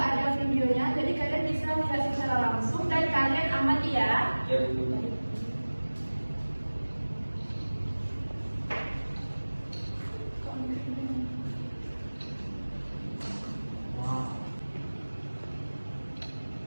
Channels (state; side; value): inverted; both; correlation -1.00